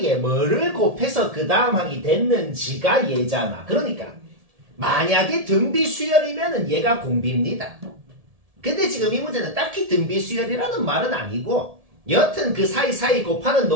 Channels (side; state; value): left; late; 1.7 ms